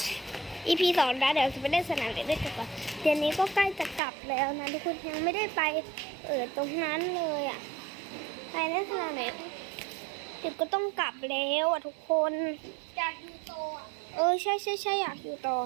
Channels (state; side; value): drops out; left; at 4.0 s